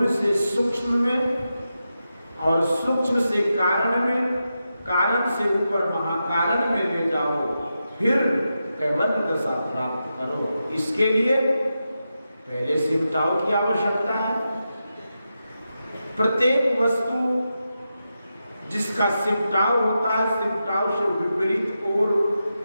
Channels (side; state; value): both; inverted; correlation -0.89